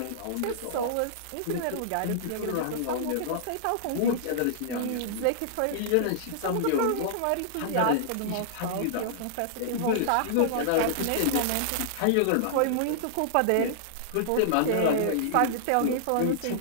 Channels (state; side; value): different; both; correlation -0.02